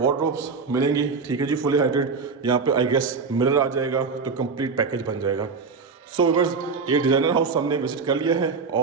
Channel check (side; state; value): left; quieter; 4.9 dB